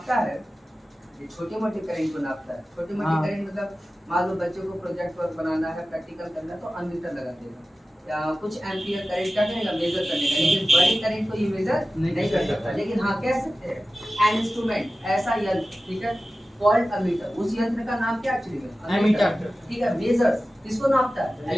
है ये छोटे मोटे करंट को नापता है। छोटे मोटे करंट मतलब मान लो बच्चों को प्रोजेक्ट वर्क बनाना है, प्रैक्टिकल करना है, तो अमीटर लगा देगा, या कुछ एम्पियर करंट का करेगा, मेजर करने का। लेकिन बड़े करंट को ये मेजर नहीं कर सकता। लेकिन हाँ कह सकते हैं एन इंस्ट्रूमेंट, ऐसा यंत्र, ठीक है, कॉल्ड अमीटर। उस यंत्र का नाम क्या एक्चुअली में? अमीटर। ठीक है, मेजर्स किसको नापता है?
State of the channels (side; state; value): both; normal; correlation 0.95